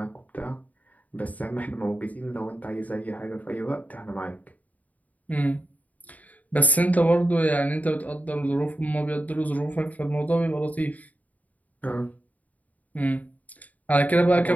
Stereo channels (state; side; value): late; right; 0.074 ms